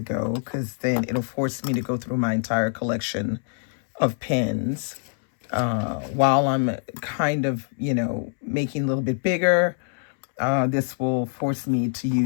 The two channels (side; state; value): right; silent; 62 dB below the other